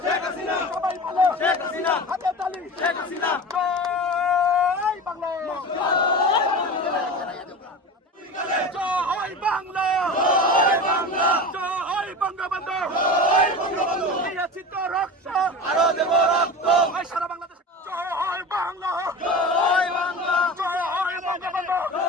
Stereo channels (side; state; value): both; normal; correlation 0.30